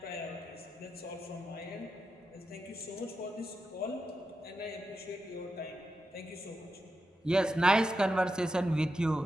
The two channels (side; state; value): both; normal; correlation 0.88